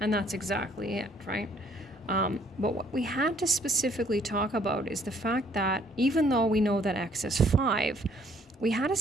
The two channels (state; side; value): normal; both; correlation 0.63